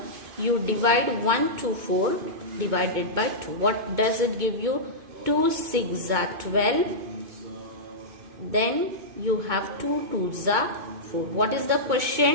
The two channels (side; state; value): left; late; 2.2 ms